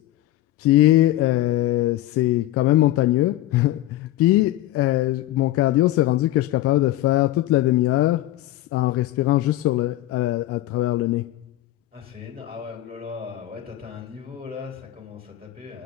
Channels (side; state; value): right; quieter; 15.0 dB